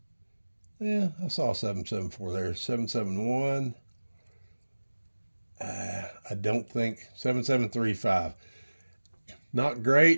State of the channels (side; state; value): both; inverted; correlation -1.00